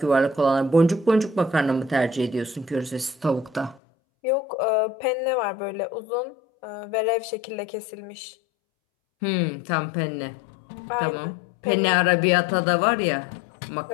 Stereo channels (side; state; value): right; drops out; at 3.8 s